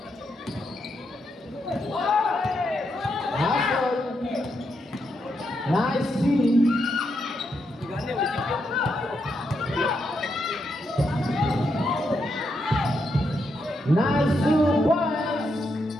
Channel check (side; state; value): both; normal; correlation 0.81